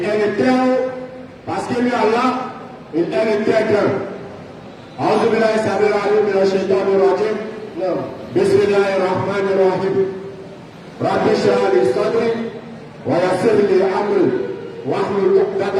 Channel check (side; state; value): both; identical; correlation 1.00